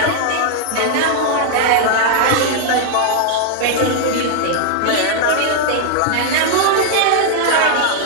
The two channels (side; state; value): both; different; correlation 0.00